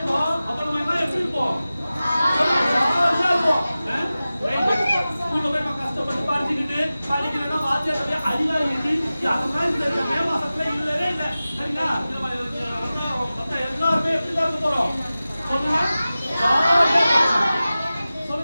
அப்ப நம்ம எல்லாம் எப்படி இருப்போம்? ஸ்கூல்ல போய் நம்ம கஷ்டப்பட்டு படிச்சுக்கிட்டு படிக்கிறதா வாத்தியாட்ட அடிவாங்கிட்டு அதெல்லாம் இந்த மே மாசத்துல இல்லவே இல்லை. சரிங்களா? எல்லாருமே எப்படிதான் இருக்க போறோம்? சொல்லுங்க.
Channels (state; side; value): inverted; both; correlation -0.96